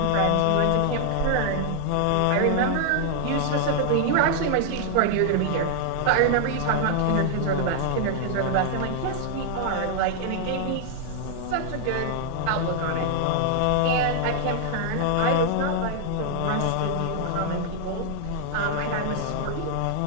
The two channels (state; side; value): different; both; correlation -0.01